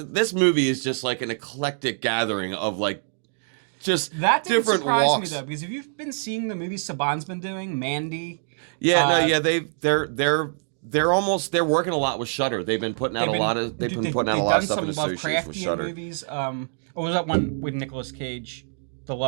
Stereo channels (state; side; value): silent; left; digital silence